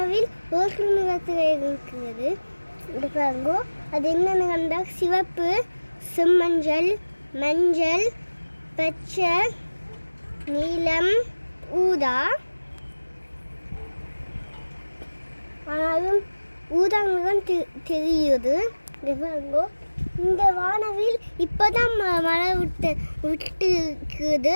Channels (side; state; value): both; inverted; correlation -1.00